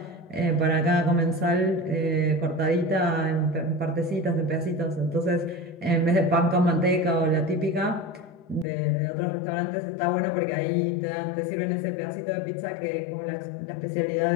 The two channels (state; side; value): drops out; right; at 8.7 s